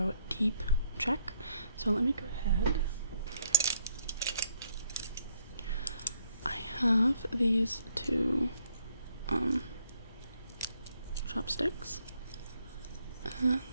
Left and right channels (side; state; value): both; inverted; correlation -0.69